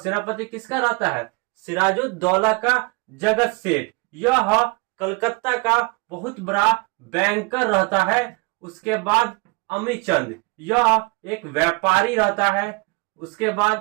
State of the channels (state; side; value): quieter; left; 28.4 dB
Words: किसका रहता है? सिराजुद्दौला का जगत सेठ। यह कलकत्ता का बहुत बड़ा बैंकर रहता है। उसके बाद अमीचंद यह एक व्यापारी रहता है। उसके